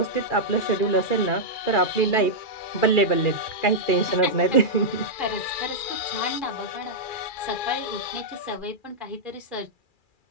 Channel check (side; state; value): right; late; 2.4 ms